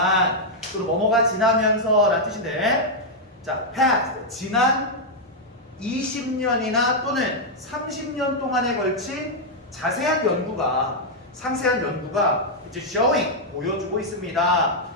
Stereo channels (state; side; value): normal; both; correlation -0.03